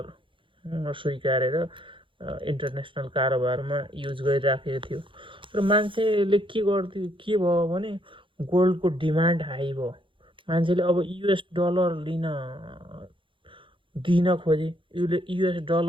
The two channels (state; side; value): late; left; 0.25 ms